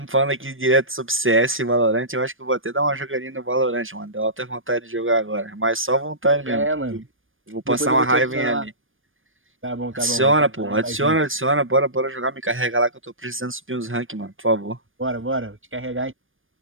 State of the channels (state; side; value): late; left; 0.59 ms